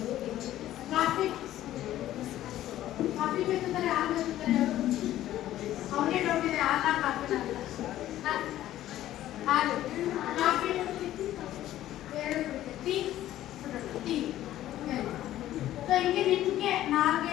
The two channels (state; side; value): quieter; right; 13.5 dB